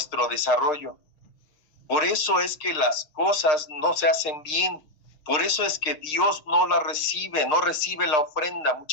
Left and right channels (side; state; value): right; late; 6.6 ms